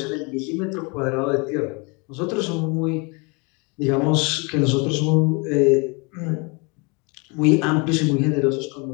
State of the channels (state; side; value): quieter; right; 30.6 dB